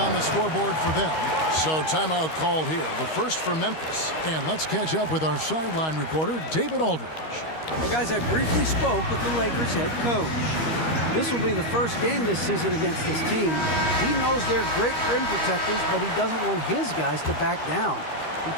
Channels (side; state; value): right; late; 13 ms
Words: the scoreboard for them. So timeout called here. The first for Memphis. And let's catch up with our sideline reporter, David Aldridge. Well, guys, I briefly spoke with the Lakers head coach. This will be the first game this season against this team. He knows they're great rim protectors, but he doesn't want his guys to back down. He